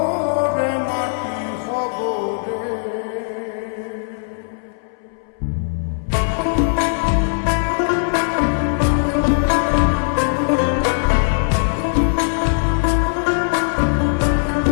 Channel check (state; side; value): silent; right; 63 dB below the other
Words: রে মাটি হব রে।